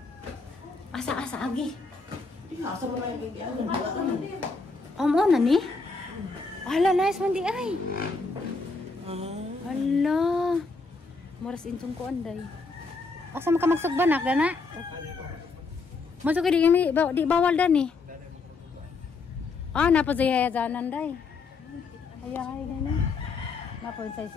Asa agi. Asa ba na yung Mo na ni? Hala, nice man di ay. Hala. Moras insong ko anday. Asa maka magsugbanak dana? Masuk ke di bawal dan nih. Napa saya jalan day? Ayah dana. Napa saya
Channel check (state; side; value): quieter; right; 4.1 dB